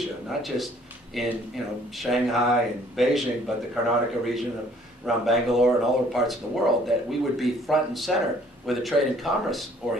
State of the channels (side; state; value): both; normal; correlation 0.59